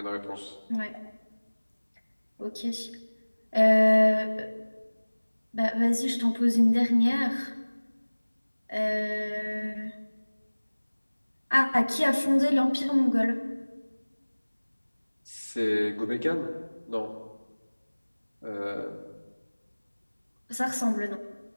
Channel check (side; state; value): both; inverted; correlation -1.00